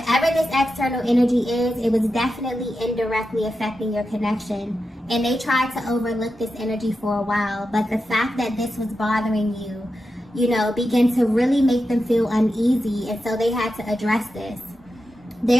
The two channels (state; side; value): normal; both; correlation 0.90